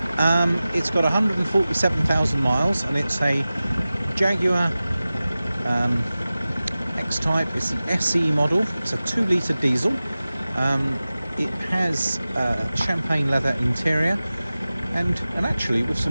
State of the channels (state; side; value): inverted; both; correlation -0.96